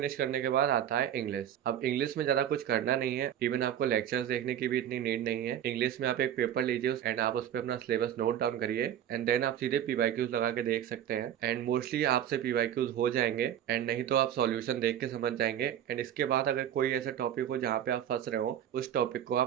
करने के बाद आता है इंग्लिश। अब इंग्लिश में ज्यादा कुछ करना नहीं है, इवन आपको लेक्चर्स देखने की भी इतनी नीड नहीं है। इंग्लिश में आप एक पेपर लीजिए एंड आप उस पर अपना सिलेबस नोट डाउन करिए एंड देन आप सीधे पीवाईक्यूज लगा के देख सकते हैं। एंड मोस्टली आपसे पीवाईक्यूज हो जाएंगे एंड नहीं तो आप सॉल्यूशन देख के समझ जाएंगे। एंड इसके बाद अगर कोई ऐसा टॉपिक हो जहाँ पे आप फंस रहे हो, उस टॉपिक को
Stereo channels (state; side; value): quieter; left; 10.4 dB